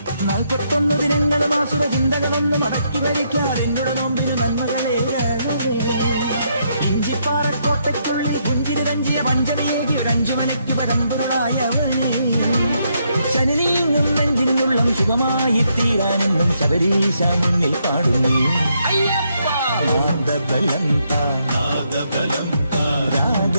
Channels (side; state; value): both; inverted; correlation -0.76